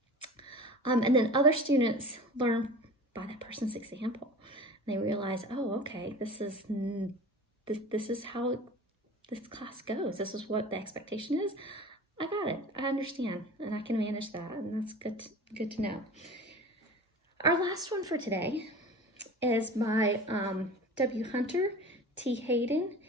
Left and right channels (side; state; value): both; normal; correlation 0.38